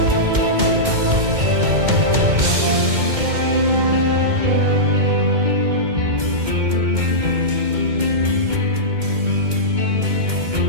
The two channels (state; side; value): late; left; 2.2 ms